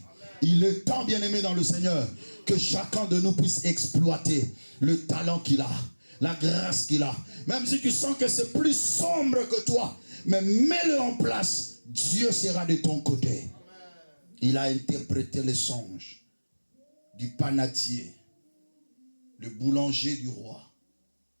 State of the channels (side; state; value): both; inverted; correlation -1.00